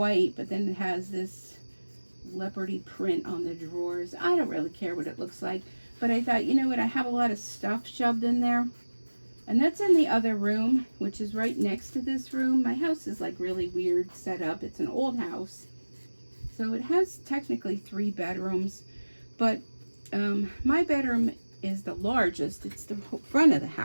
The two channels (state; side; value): inverted; both; correlation -1.00